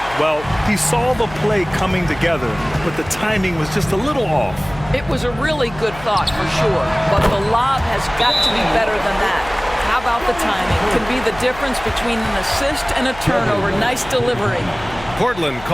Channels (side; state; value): left; noise; hum, 17 dB below the sound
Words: Well, he saw the play coming together, but the timing was just a little off. It was a really good thought for sure, but the lob has got to be better than that. How about the timing? Can be the difference between an assist and a turnover. Nice delivery. Portland